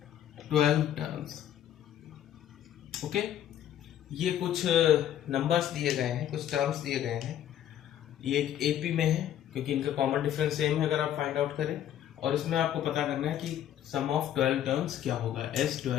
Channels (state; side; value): quieter; right; 11.0 dB